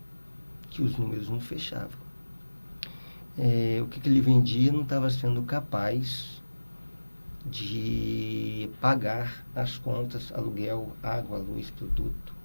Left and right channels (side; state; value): both; inverted; correlation -1.00